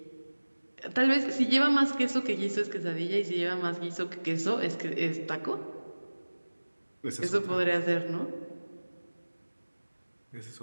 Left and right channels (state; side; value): inverted; both; correlation -1.00